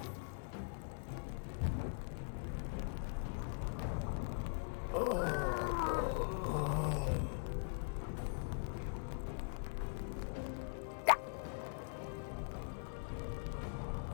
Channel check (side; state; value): right; silent; digital silence